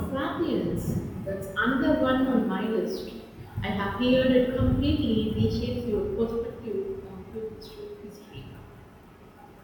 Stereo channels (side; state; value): both; identical; correlation 1.00